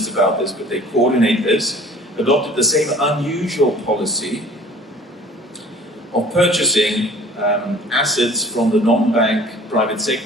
about this, but they coordinate this, adopted the same unusual policy of purchasing assets from the non-bank private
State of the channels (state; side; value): normal; both; correlation 0.48